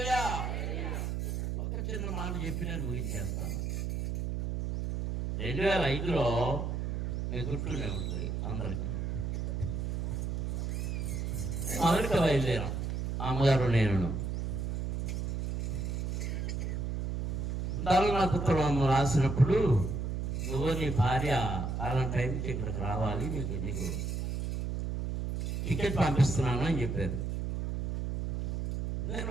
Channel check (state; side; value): noise; right; hum, 2 dB below the sound